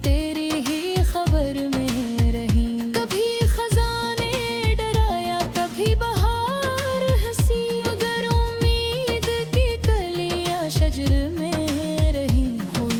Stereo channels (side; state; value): both; identical; correlation 1.00